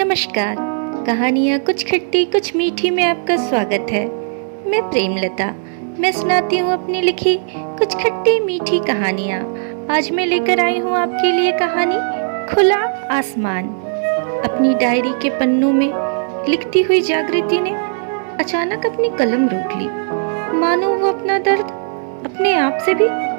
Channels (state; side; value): silent; left; digital silence